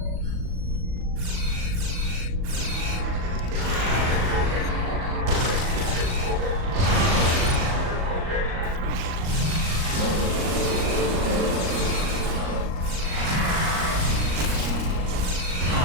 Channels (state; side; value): late; left; 38 ms